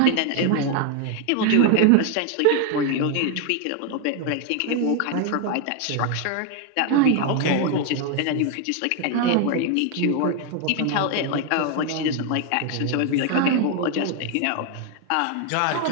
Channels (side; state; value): both; different; correlation 0.01